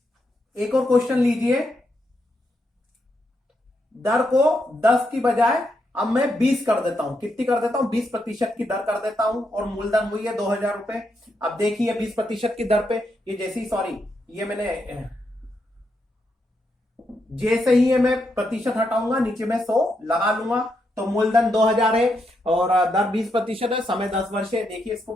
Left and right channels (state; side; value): normal; both; correlation 0.81